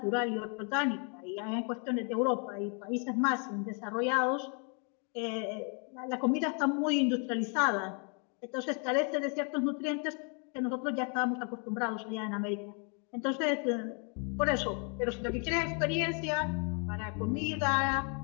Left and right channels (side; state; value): right; quieter; 38.5 dB